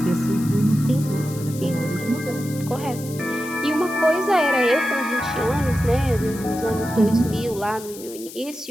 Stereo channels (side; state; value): left; noise; hiss, 15 dB below the sound